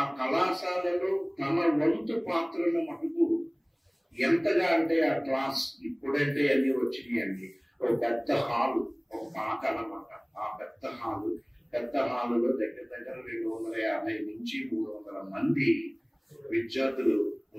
కళాశాలలో తన వంతు పాత్రను మటుకు ఎంతగా అంటే ఆ క్లాస్ ఇప్పుడంటే అన్ని వచ్చినాయి అండి. ఒక పెద్ద హాలు, ఒక పాక అన్నమాట. ఆ పెద్ద హాలులో దగ్గర 250 నుంచి 300 మంది విద్యార్థులు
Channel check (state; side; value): identical; both; correlation 1.00